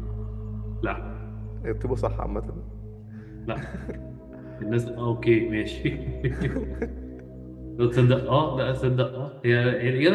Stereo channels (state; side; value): identical; both; correlation 1.00